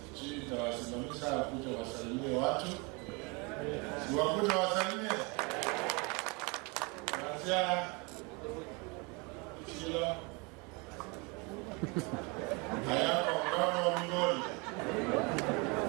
Nitawasimamisha kuja wasalimie watu. Si wakuja wasalimie. Kuanzia Kilo hayako mkono wa Migori.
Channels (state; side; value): quieter; left; 29.4 dB